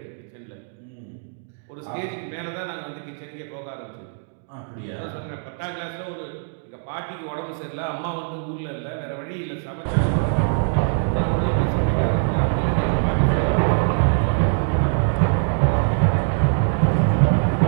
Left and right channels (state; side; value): silent; left; 63 dB below the other